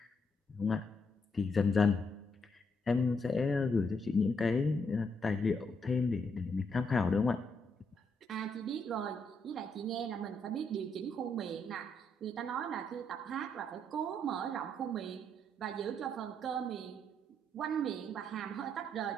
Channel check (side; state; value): both; normal; correlation 0.76